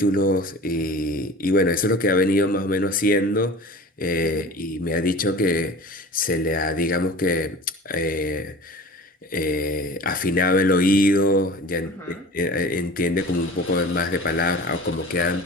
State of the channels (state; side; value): normal; both; correlation 0.39